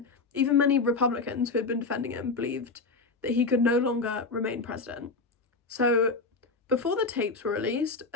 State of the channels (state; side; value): quieter; right; 3.9 dB